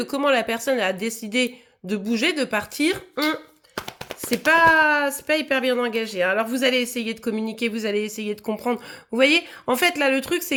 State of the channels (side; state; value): both; identical; correlation 1.00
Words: comment la personne a décidé de bouger, de partir, c'est pas hyper bien engagé. Alors vous allez essayer de communiquer, vous allez essayer de comprendre. Vous voyez, en fait là le truc